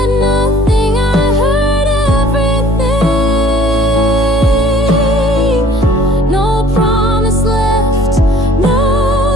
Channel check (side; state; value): both; normal; correlation 0.54